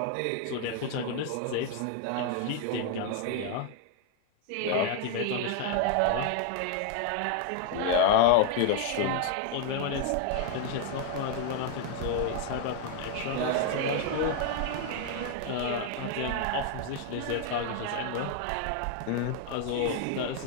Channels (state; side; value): different; both; correlation 0.00